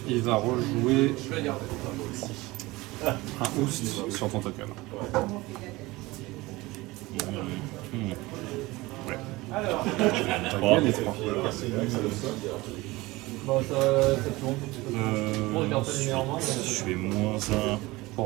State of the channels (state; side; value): quieter; left; 20.8 dB